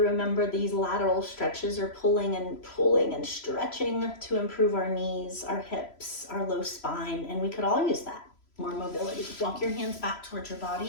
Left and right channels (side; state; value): right; late; 3.0 ms